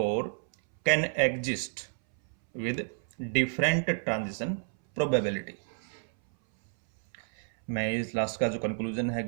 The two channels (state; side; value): silent; left; 58 dB below the other